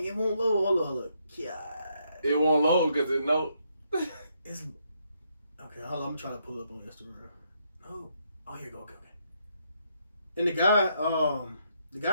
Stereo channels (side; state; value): both; inverted; correlation -0.76